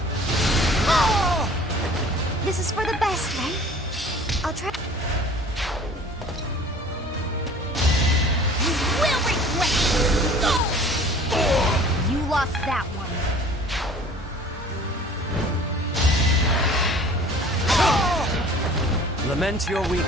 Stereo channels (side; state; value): both; normal; correlation 0.47